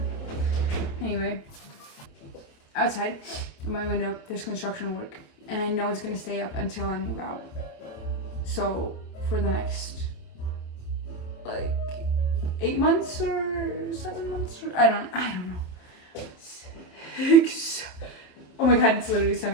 Anyway, outside of my window, there's construction work, and I know it's gonna stay up until I move out. So for the next like 8 months or 7 months, or I don't know. 6. Oh my god, it's literally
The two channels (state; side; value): late; right; 27 ms